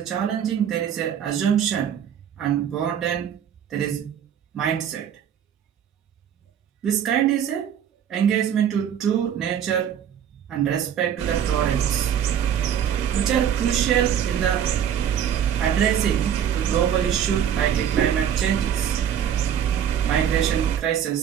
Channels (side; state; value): left; quieter; 9.2 dB